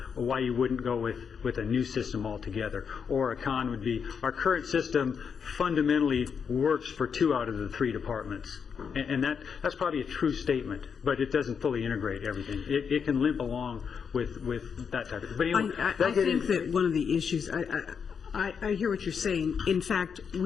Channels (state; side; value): quieter; right; 6.6 dB